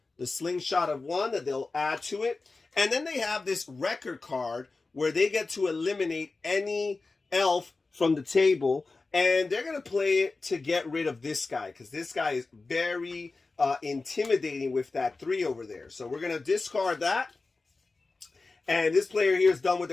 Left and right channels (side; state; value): right; quieter; 3.7 dB